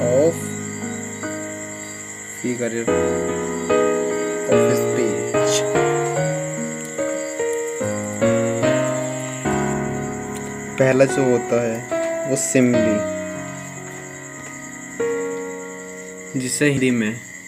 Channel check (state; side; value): identical; both; correlation 1.00